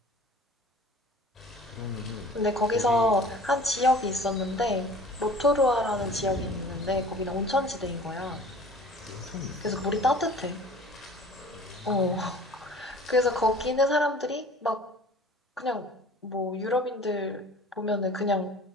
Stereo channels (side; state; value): both; normal; correlation 0.45